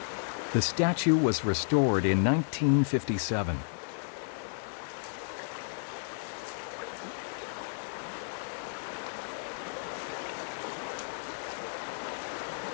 The statue was restored in 1957.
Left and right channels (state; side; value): silent; right; digital silence